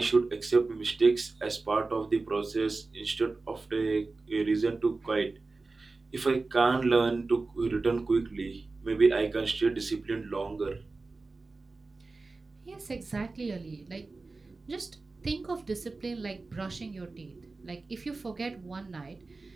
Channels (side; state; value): left; quieter; 3.7 dB